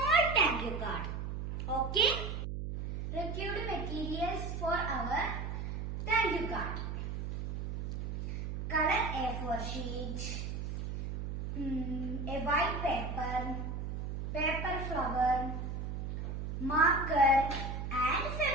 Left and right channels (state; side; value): noise; right; hum, 4 dB below the sound